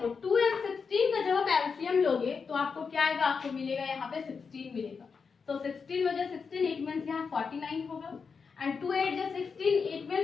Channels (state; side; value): quieter; right; 5.4 dB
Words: 2 और 16 का जब आप एलसीएम लोगे तो आपको क्या आएगा, आपको मिलेगा यहाँ पे 16 मिलेगा, तो 16 वजह 16 इट मीन्स यहाँ 49 होगा एंड 2 8 जा 16 इट